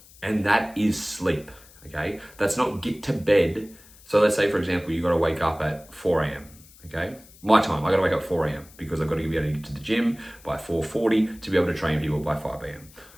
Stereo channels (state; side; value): noise; left; hiss, 24 dB below the sound